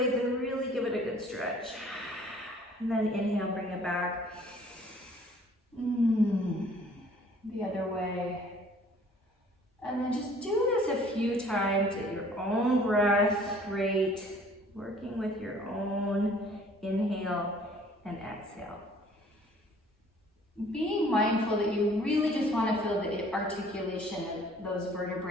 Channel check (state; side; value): normal; both; correlation 0.55